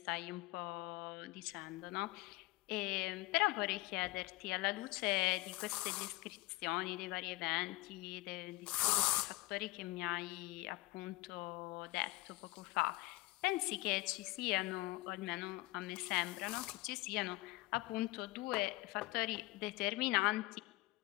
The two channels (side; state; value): right; quieter; 20.6 dB